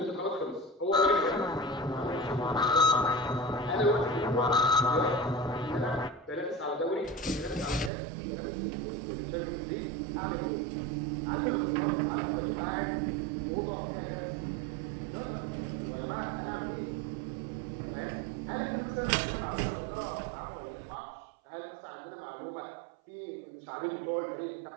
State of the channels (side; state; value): left; drops out; at 7.9 s